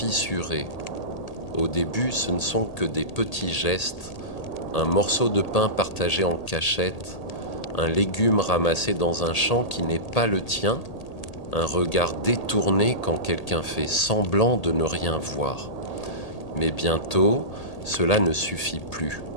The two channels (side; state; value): right; late; 1.8 ms